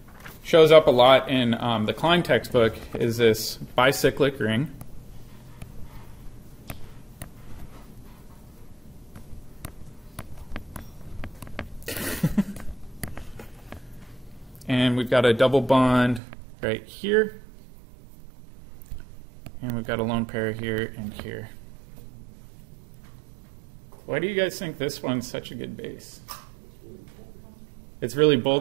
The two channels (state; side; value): drops out; left; at 16.2 s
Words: shows up a lot in the Klein textbook is this bicyclic ring. And we've got a double bond right here. And we've got a lone pair here and here. Why do you guys think this one's such a good base? It's really